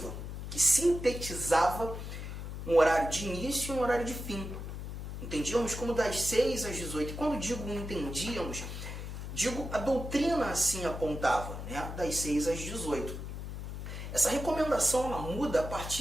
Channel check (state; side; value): noise; left; hum, 7 dB below the sound